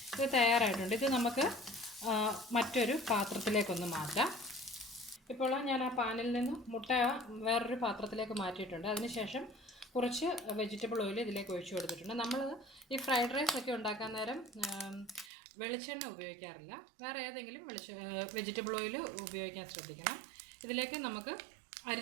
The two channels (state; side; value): drops out; left; at 15.3 s